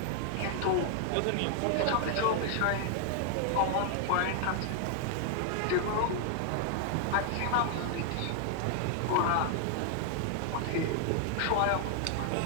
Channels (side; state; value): both; different; correlation 0.00